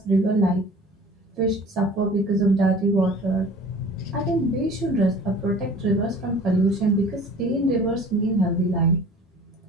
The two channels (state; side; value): normal; both; correlation 0.45